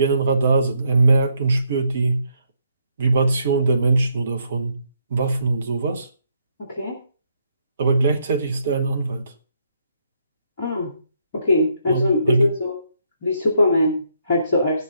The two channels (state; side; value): inverted; both; correlation -0.74